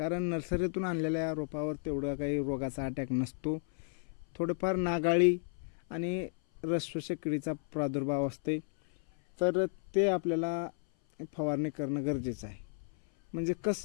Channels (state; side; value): silent; right; 56 dB below the other